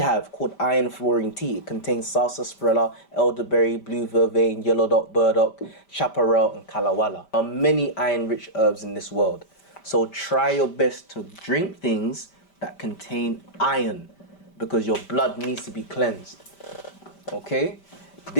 called iron fluorine tea. It contains sarsaparilla, elderberry, blue vervain, yellow dot, burdock, chaparral, and kalawala. There are many iron-rich herbs in this world. So try your best to drink things that contain iron, because your blood needs to be cleansed. Okay?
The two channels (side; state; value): right; late; 5.1 ms